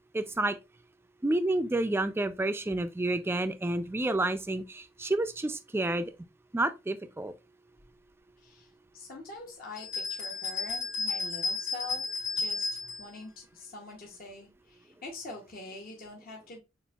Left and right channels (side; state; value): both; normal; correlation 0.73